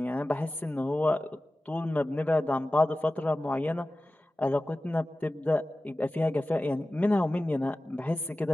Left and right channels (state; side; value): normal; both; correlation 0.96